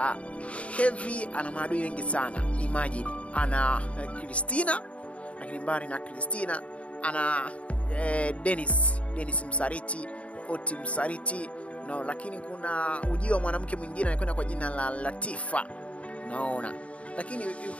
Kevin ana maadui wengi sana. Imagine ana Christina, lakini mbali na Christina ana Dennis msaliti, Oti msaliti, no, lakini kuna ujio wa mwanamke mwingine anakwenda kwa jina la Latifa. Naona. Lakini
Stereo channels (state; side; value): late; right; 0.064 ms